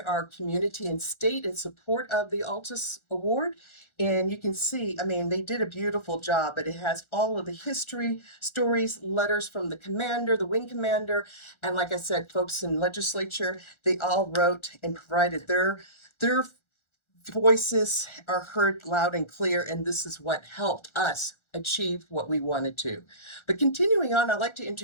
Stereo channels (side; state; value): right; late; 1.4 ms